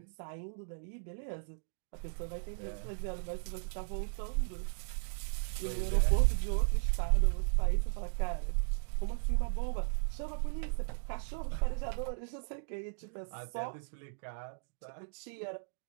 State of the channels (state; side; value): silent; left; digital silence